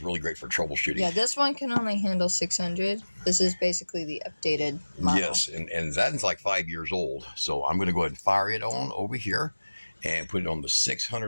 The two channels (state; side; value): inverted; both; correlation -1.00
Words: really great for troubleshooting. Yeah, this one can only handle 600. This is basically the updated model. Yes, and that's like 5 years old. So I'm going to go ahead and fire it on over here and put it on the